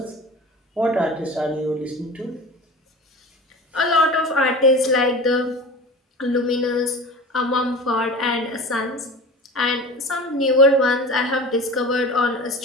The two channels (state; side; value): normal; both; correlation 0.35